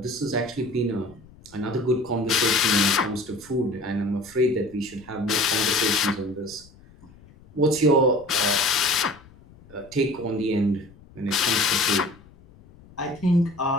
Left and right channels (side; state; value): left; noise; rumble, 24 dB below the sound